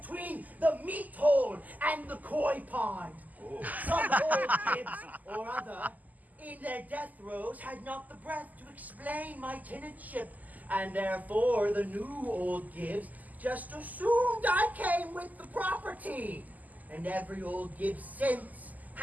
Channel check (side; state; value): left; late; 0.080 ms